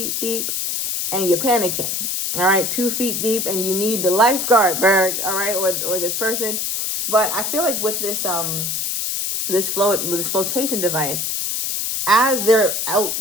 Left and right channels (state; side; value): noise; left; hiss, 1 dB below the sound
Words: deep and you're panicking, all right? 2 feet deep and you need the lifeguard, Berg, all right? Or this person. But I feel like with this this flotation device, as they're